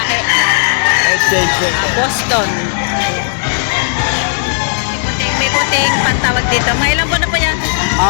Boston. May puting pantawag dito. Mga ilang buwan na po yan?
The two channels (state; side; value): silent; right; digital silence